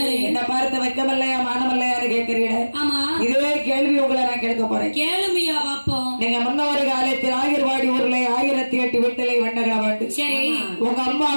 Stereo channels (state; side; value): inverted; both; correlation -1.00